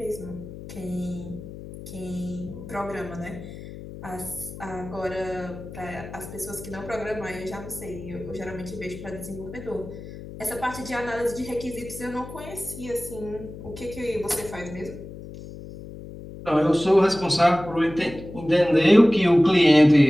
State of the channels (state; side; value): noise; left; hum, 13 dB below the sound